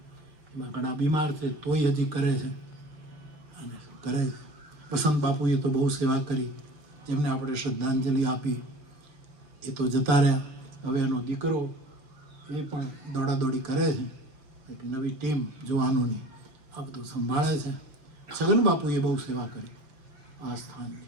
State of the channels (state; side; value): late; left; 6.8 ms